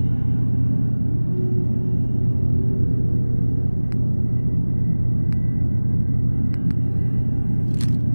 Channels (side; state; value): both; inverted; correlation -1.00